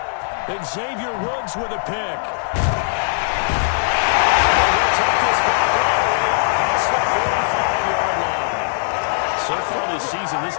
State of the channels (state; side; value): silent; right; 66 dB below the other